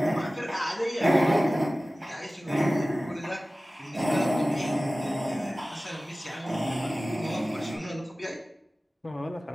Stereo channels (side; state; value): both; normal; correlation 0.97